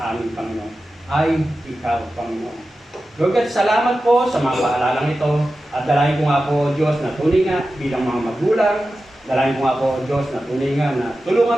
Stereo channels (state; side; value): normal; both; correlation 0.93